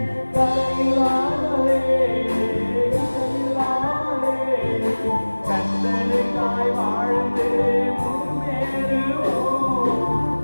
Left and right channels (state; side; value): inverted; both; correlation -1.00